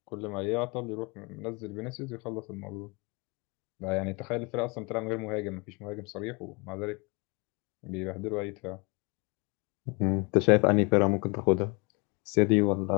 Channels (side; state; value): right; quieter; 30.9 dB